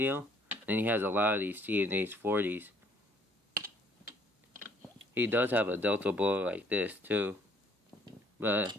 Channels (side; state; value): both; normal; correlation 0.62